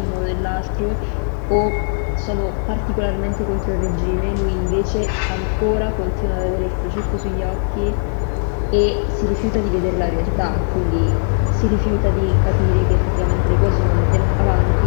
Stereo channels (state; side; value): silent; right; digital silence